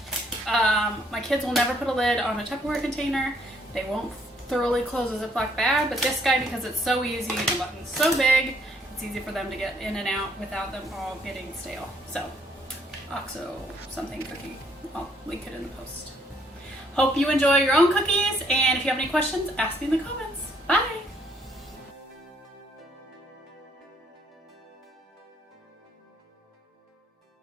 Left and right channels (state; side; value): normal; both; correlation 0.67